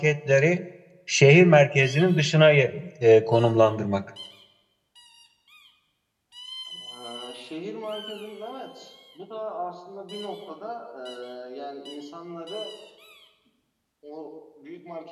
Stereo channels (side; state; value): both; identical; correlation 1.00